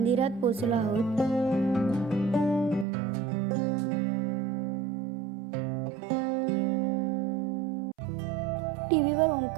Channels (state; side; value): drops out; left; at 2.9 s